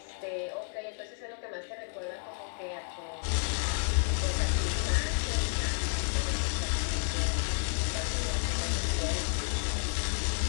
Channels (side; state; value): right; silent; 57 dB below the other